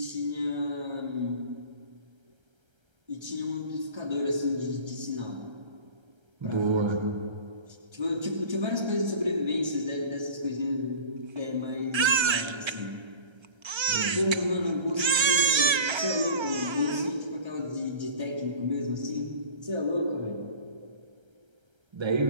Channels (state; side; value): late; left; 1.3 ms